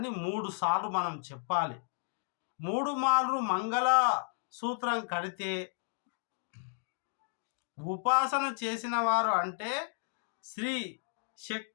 3 సార్లు మనం చెప్పాలి. 3 మార్లు మంగళ సూత్రం కడితే ఉపాసన చేసిన వారు, అంటే శ్రీ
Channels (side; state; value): right; silent; digital silence